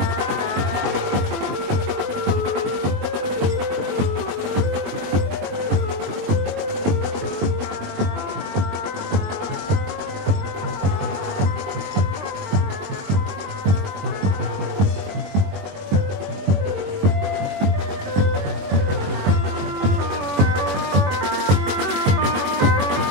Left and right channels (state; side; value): late; left; 21 ms